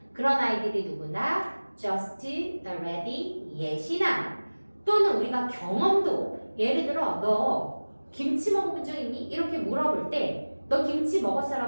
그런 아이들이 누구나 just, already, yet이나 또는 우리가 경험도 예를 들어 너 김치 먹어본 적 있니? 이렇게 물어볼 때 너 김치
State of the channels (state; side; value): inverted; both; correlation -1.00